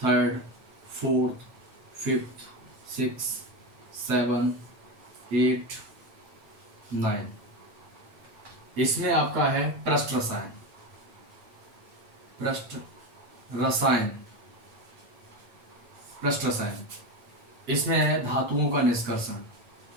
fourth, fifth, six, seven, eight, nine. इसमें आपका है पृष्ठ रसायन। पृष्ठ रसायन पृष्ठ रसायन इसमें है धातुओं का निष्कर्षण।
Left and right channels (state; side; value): late; left; 8.2 ms